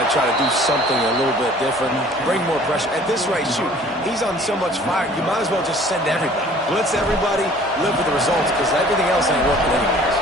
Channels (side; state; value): both; normal; correlation 0.52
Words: to try to do something a little bit different. Bring more pressure. At this rate, shoot, he's on so much fire, you might as well just send everybody. Blitz everybody, live with the results, because everything else ain't working anyways.